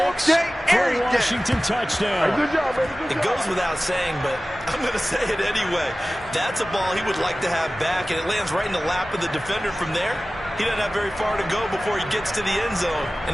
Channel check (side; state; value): both; normal; correlation 0.97